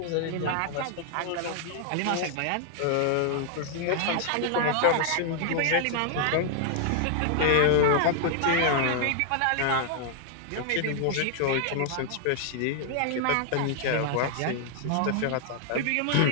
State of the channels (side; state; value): both; different; correlation 0.00